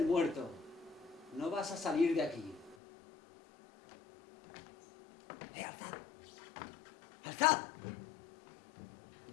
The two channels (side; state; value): right; drops out; at 2.8 s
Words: muerto, no vas a salir de aquí. ¡Alzad! ¡Alzad!